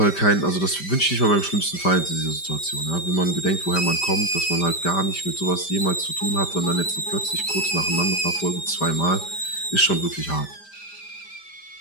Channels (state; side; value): late; right; 5.1 ms